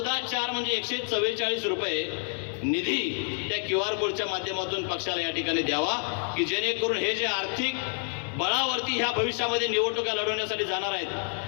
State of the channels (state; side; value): silent; right; 55 dB below the other